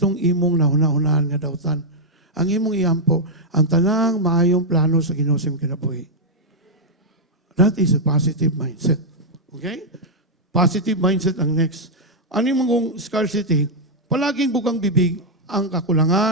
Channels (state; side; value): normal; both; correlation -0.03